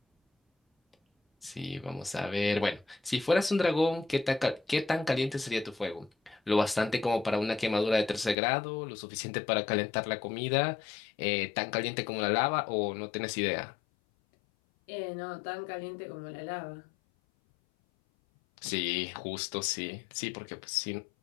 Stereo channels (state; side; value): drops out; right; at 8.3 s